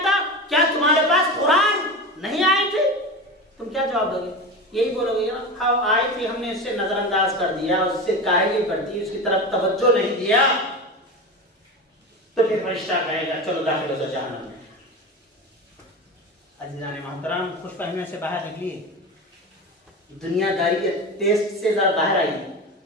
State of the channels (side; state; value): both; normal; correlation 0.26